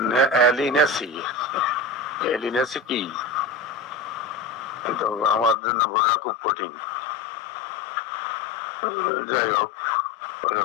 এলিনেসি। এলিনেসি কি তো আমার জন্য বোঝা খুব কঠিন। যাই হোক,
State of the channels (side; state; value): right; drops out; at 5.6 s